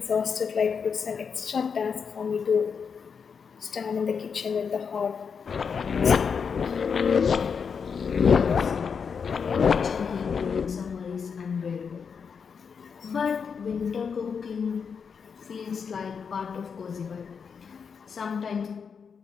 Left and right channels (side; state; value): right; quieter; 6.2 dB